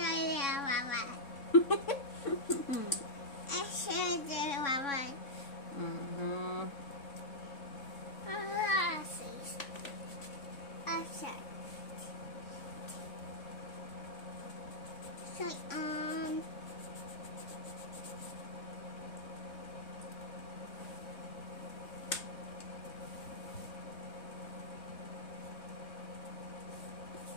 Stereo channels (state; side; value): late; right; 3.6 ms